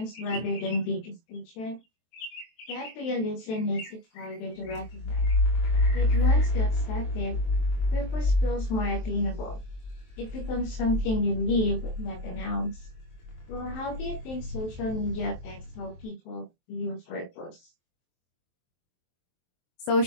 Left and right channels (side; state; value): right; late; 23 ms